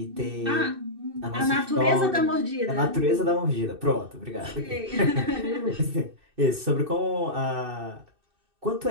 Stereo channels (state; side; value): late; left; 2.6 ms